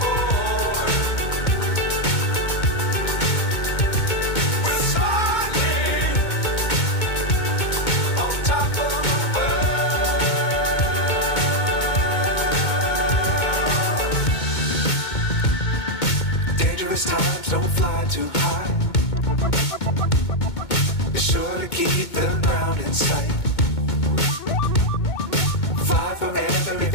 Times don't fly too high. Be sure to keep the ground in sight. Fly forever if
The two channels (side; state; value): right; late; 2.2 ms